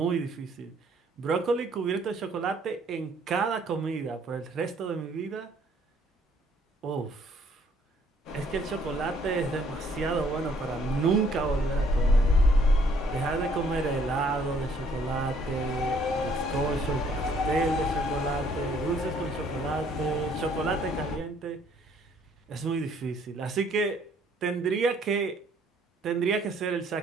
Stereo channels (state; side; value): normal; both; correlation 0.63